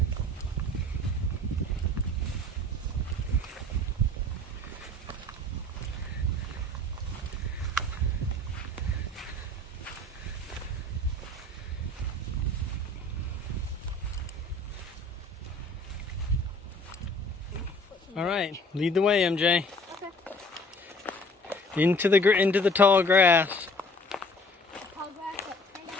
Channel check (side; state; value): both; normal; correlation 0.50